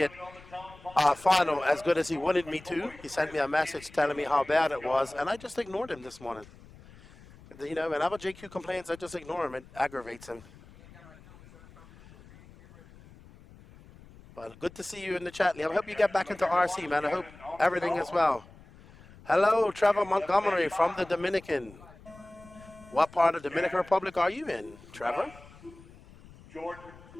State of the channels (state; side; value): noise; left; rumble, 22 dB below the sound